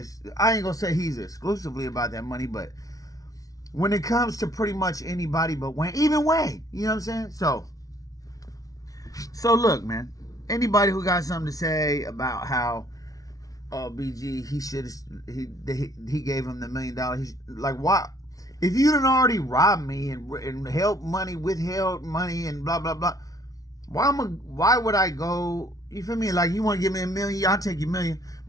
I ain't gonna say he's exclusively about that money, but when it comes to pretty much anybody but Wayne, even Wayne, you know what I'm saying? So look, man, anybody who got something to say about how BG, he gave him the $1 million. He's like, why? If you done already robbed me and withheld money and blah blah blah, why would I go? You feel me? Like, you want to give me $1 million, I'll take your $1 million.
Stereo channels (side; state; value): right; late; 0.17 ms